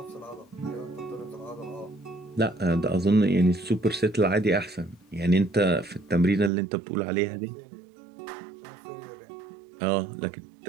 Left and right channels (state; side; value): drops out; left; at 6.5 s